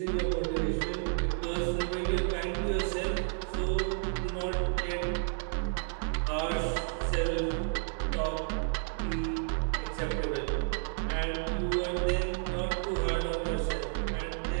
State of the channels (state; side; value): silent; left; digital silence